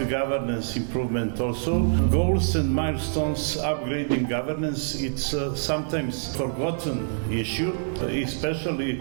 governance improvement also. Goals and milestones, upgrading governance, it's sometimes forgotten issue, especially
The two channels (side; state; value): left; silent; 61 dB below the other